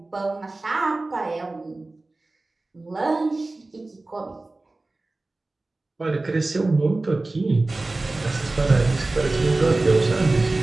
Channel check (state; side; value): quieter; left; 3.1 dB